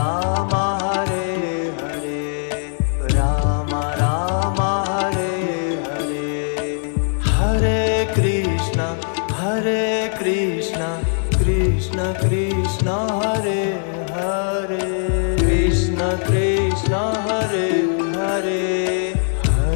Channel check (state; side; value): silent; right; digital silence